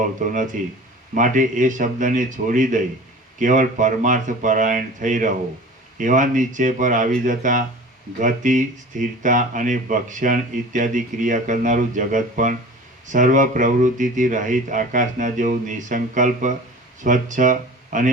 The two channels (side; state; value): both; normal; correlation 0.40